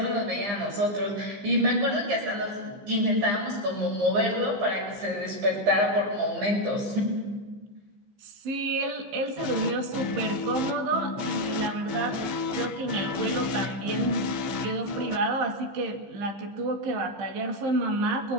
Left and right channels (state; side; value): late; left; 15 ms